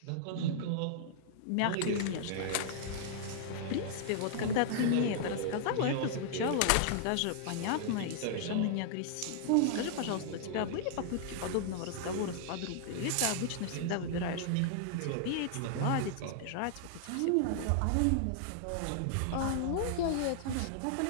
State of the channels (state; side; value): different; both; correlation -0.01